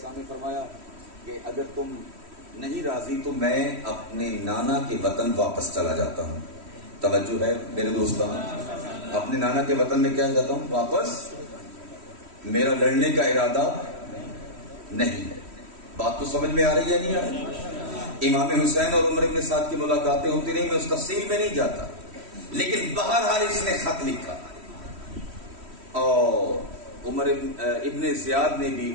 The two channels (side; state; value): left; late; 3.1 ms